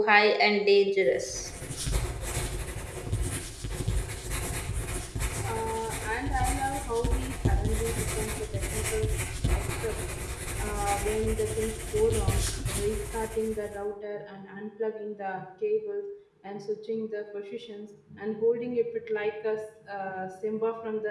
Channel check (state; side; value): identical; both; correlation 1.00